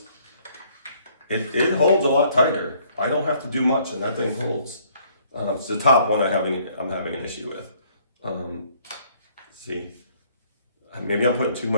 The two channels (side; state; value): both; inverted; correlation -0.62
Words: it holds a lot tighter. I don't have to do much and that thing holds. It's the top one I'm having an issue with. See, maybe I'm putting too